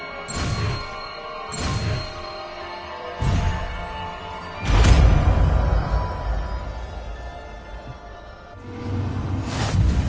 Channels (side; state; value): both; identical; correlation 1.00